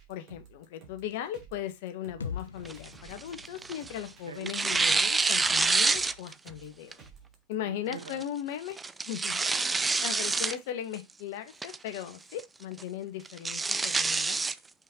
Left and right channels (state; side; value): normal; both; correlation 0.69